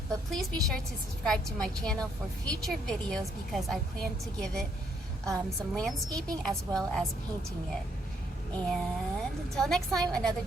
But please be sure to subscribe to my channel for future videos because I plan to give it some landscaping as well as painting it. And until next time, another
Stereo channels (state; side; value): normal; both; correlation 0.71